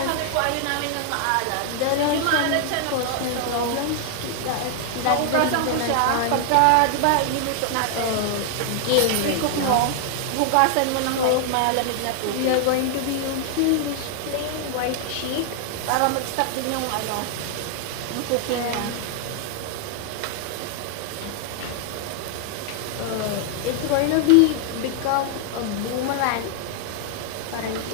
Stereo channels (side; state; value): both; different; correlation 0.00